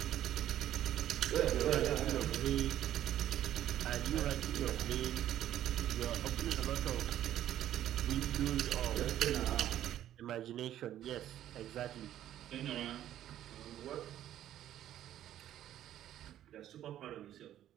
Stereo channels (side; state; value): left; quieter; 12.0 dB